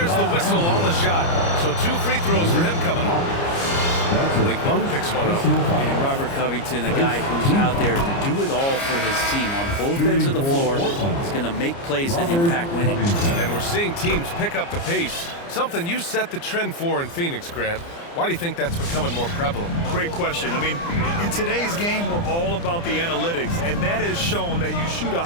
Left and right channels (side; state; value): right; late; 29 ms